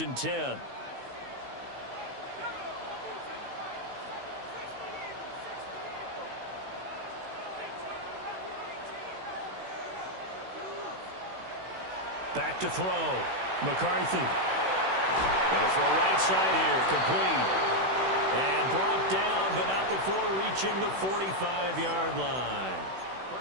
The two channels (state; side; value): late; left; 16 ms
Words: and 10. Back to throw. McCarthy. Going to throw right side here. Complete. And brought down, but not before reaching the 45-yard line.